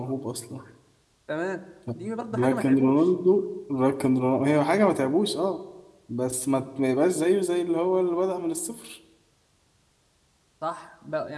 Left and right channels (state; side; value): identical; both; correlation 1.00